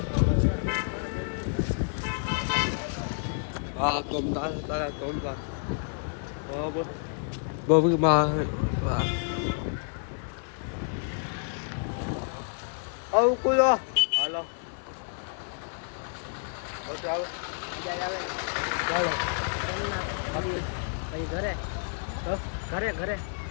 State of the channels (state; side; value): silent; right; digital silence